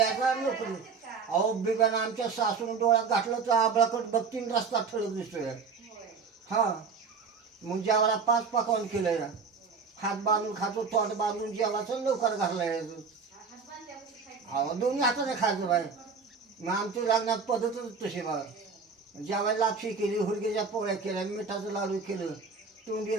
नोकरी. अहो बिब्यानं आमच्या सासून डोळ्यात घातलं तर आबळाकट बघतीन रस्ता ठळक दिसतोय. हा मग जेवायला 5 पकवान केलंय. हात बांधून खातो तोंड बांधून जेवायचं लवकर घाललाय. अहो दोन्ही हाताने खायचं बाय. मग आमच्या लग्नात पद्धतच तशी बघा. जेवायला लापशी केली हुरगेच्या पोळ्या केल्या मिठाचं लाडू केलं तोंडी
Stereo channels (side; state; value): left; quieter; 5.2 dB